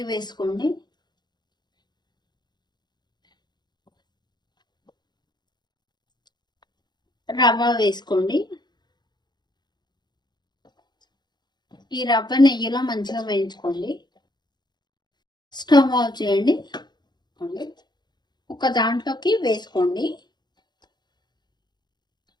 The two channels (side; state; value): right; late; 0.21 ms